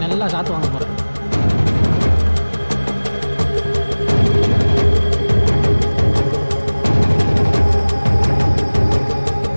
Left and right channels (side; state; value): both; inverted; correlation -1.00